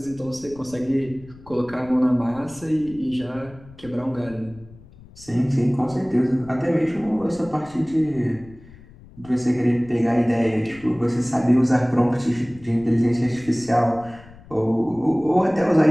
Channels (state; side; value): noise; left; rumble, 21 dB below the sound